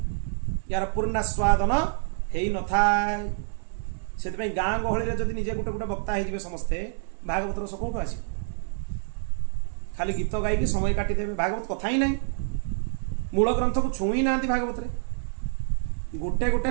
यार पूर्णास्वादन हो न था से गाँ गहली जब निजे गोटे गोटे वक्ता हो समस्ते भागवत रस कौटू आस खाली गीत गायकी समय काटिदेवे भागवत कथा ही ना मूल ग्रंथ को छुई ना भागवत रे गोटे गोटे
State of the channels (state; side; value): silent; left; digital silence